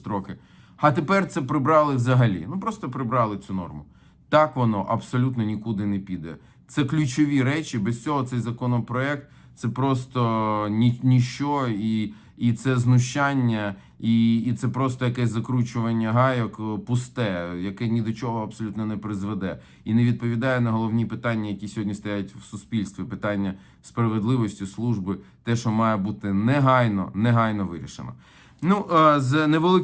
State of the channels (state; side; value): identical; both; correlation 1.00